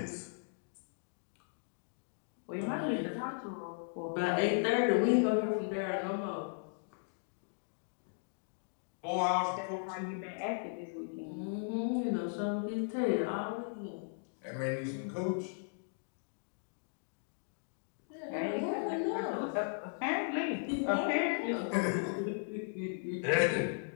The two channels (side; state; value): right; silent; digital silence